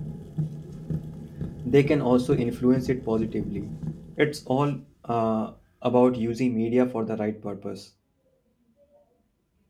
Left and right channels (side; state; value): both; identical; correlation 1.00